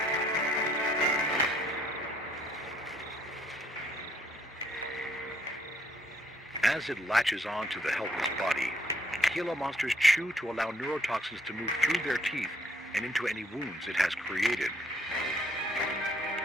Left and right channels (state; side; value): normal; both; correlation 0.67